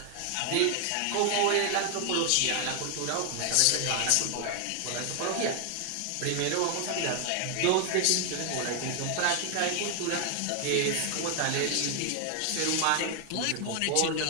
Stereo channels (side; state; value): both; different; correlation 0.00